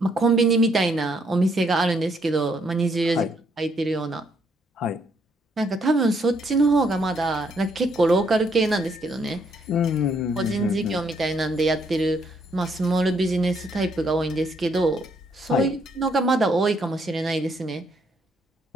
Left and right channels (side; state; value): both; normal; correlation 0.71